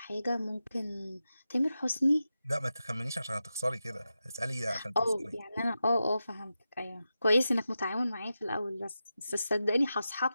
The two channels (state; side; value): inverted; both; correlation -0.91